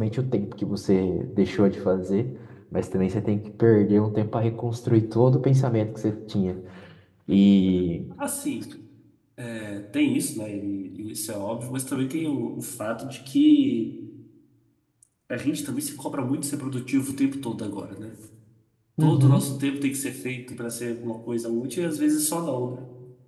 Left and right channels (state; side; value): identical; both; correlation 1.00